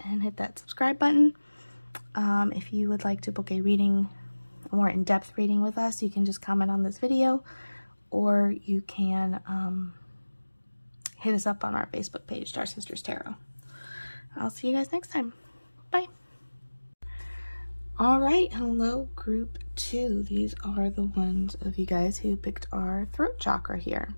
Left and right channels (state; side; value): inverted; both; correlation -1.00